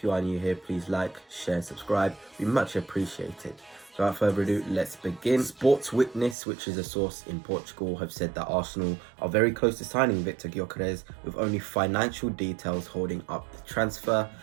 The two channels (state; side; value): drops out; left; at 6.4 s